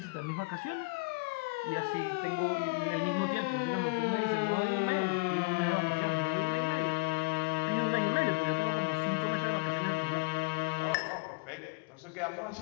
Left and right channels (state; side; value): quieter; right; 26.2 dB